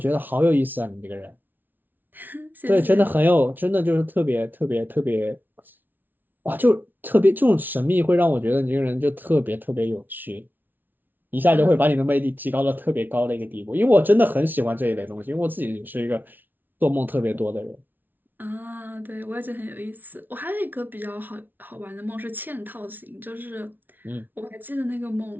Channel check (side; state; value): left; late; 0.088 ms